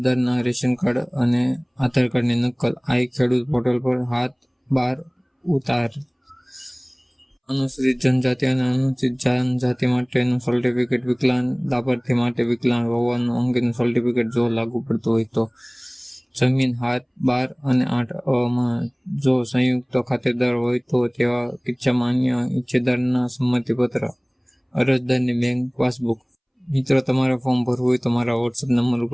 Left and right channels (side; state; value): both; identical; correlation 1.00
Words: રેશન કાર્ડ અને આધાર કાર્ડની નકલ। આ ખેડૂત પોર્ટલ પર હાથ બાર ઉતાર। અનુસૂચિત જનજાતિ અને અનુસૂચિત જનજાતિ માટેનું સર્ટિફિકેટ। વિકલાંગ લાભાર્થી માટે વિકલાંગ હોવાનું અંગેનું સર્ટિફિકેટ જો લાગુ પડતું હોય તો। જમીન હાથ 12 અને 8 જો સંયુક્ત ખાતેદાર હોય તો તેવા કિસ્સામાં અન્ય હિસ્સેદારના સંમતિપત્ર। અરજદારની બેંક પાસબુક। મિત્રો, તમારે ફોર્મ ભરવું હોય તો મારા વોટ્સએપ નંબર